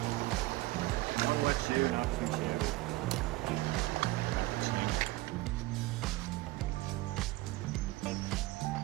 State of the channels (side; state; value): left; quieter; 19.4 dB